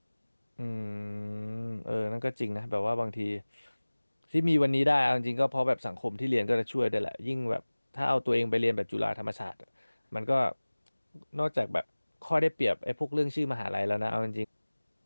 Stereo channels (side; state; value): both; inverted; correlation -1.00